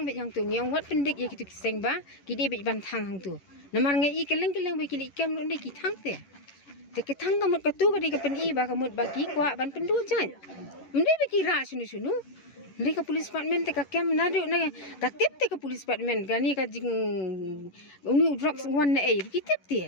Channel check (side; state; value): right; late; 11 ms